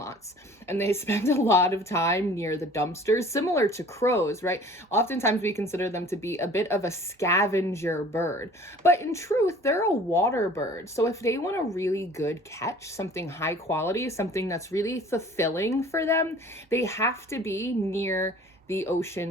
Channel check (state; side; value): normal; both; correlation 0.48